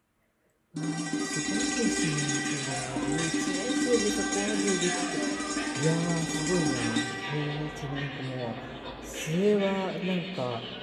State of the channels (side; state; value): both; identical; correlation 1.00